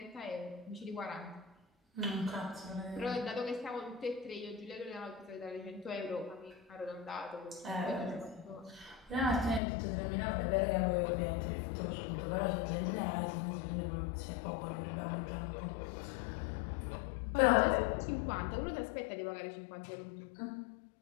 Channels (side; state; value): right; drops out; at 9.6 s